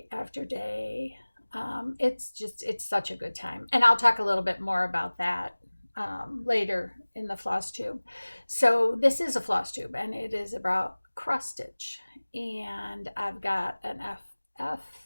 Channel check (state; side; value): inverted; both; correlation -1.00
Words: after day. It's such a good time. And I'll talk a little bit more about that later in the floss tube. So this is a floss tube and it is about cross stitch. And I've got an FF,